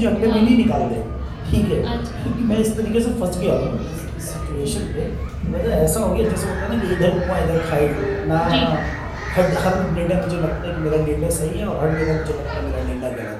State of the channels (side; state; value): both; identical; correlation 1.00